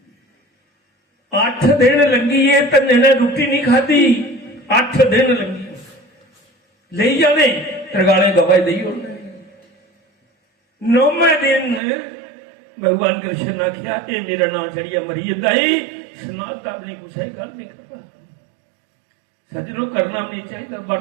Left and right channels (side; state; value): left; drops out; at 11.8 s